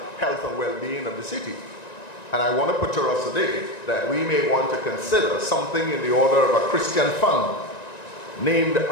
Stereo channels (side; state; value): right; late; 1.9 ms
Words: health and well-being of the city. And I want to put to us today that we may want to consider something in the order of a Christian fund named